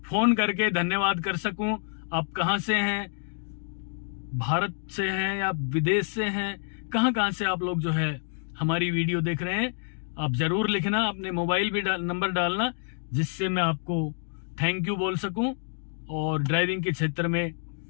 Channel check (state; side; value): silent; right; digital silence